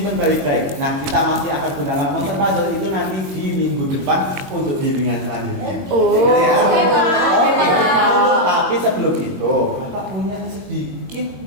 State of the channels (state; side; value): late; left; 21 ms